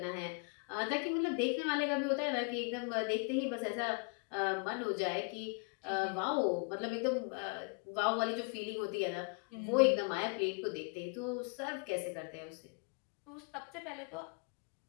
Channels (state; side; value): quieter; right; 36.6 dB